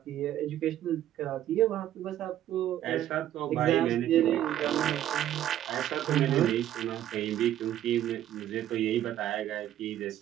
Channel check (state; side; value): quieter; left; 12.0 dB